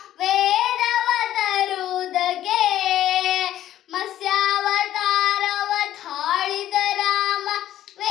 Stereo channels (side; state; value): right; quieter; 12.5 dB